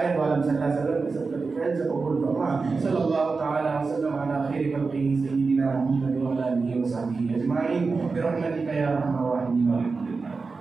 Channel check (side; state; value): left; quieter; 4.3 dB